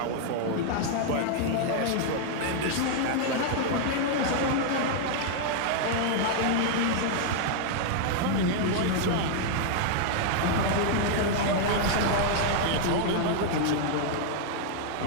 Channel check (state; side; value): different; both; correlation 0.00